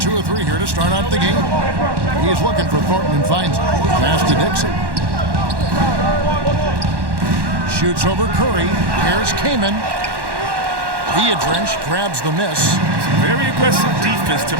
of 3 here to start out the game. He's looking for Thornton and finds it. Pass to Dixon. shoots over Curry. Here's Kaman. Viadrich grabs the miss. Very aggressive defense to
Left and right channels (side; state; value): left; late; 1.1 ms